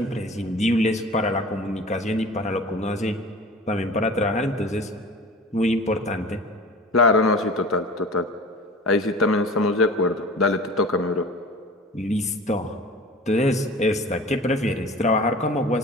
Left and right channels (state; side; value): normal; both; correlation 0.40